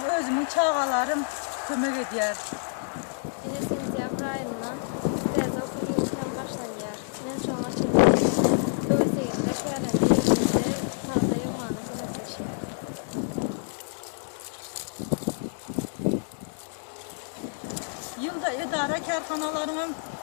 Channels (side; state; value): right; silent; digital silence